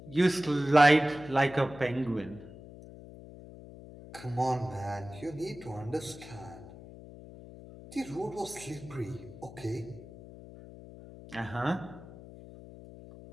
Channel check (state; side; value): noise; left; hum, 16 dB below the sound